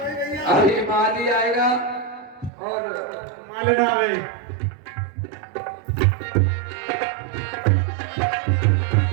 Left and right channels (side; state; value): left; drops out; at 2.5 s